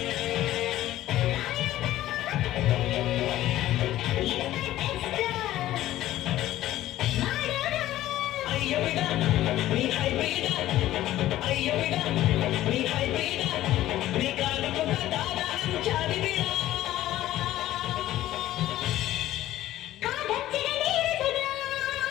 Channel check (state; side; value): quieter; right; 14.4 dB